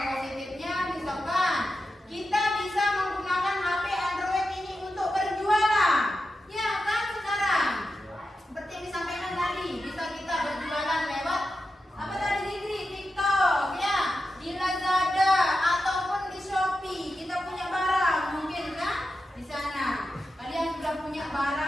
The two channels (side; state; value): both; normal; correlation 0.90